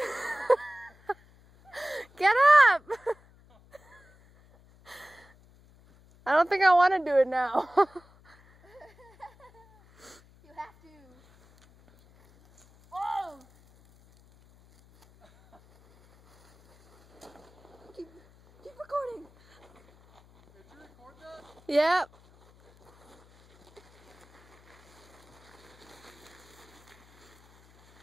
Get up! I don't think I want to do it now. You have to. Oh! Keep recording. Did you record that? Yep.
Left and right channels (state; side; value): noise; left; hum, 28 dB below the sound